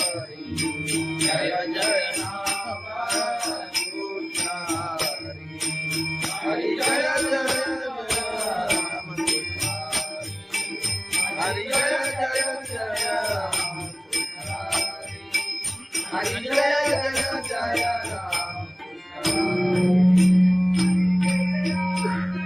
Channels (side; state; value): both; identical; correlation 1.00